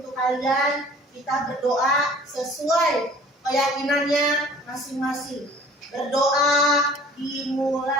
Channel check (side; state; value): both; normal; correlation 0.49